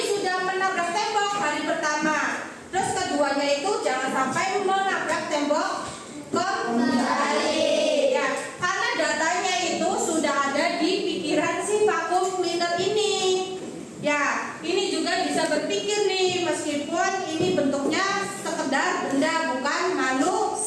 sudah menabrak tembok hari pertama. Terus keduanya itu jangan sampai menabrak tembok kembali. Ya, karena datanya itu sudah ada di pikiran si vacuum cleaner ini. Ya, ini juga bisa berpikir nih meskipun ini bentuknya sekedar benda bukan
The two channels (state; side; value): identical; both; correlation 1.00